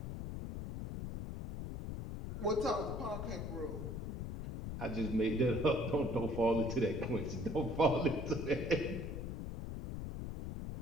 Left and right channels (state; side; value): noise; left; rumble, 5 dB below the sound